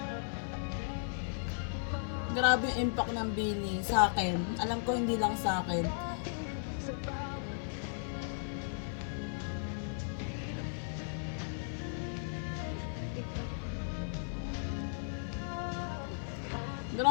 Grabe yung impact ng Bini sa akin. Alam ko hindi lang sa akin.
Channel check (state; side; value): silent; right; 54 dB below the other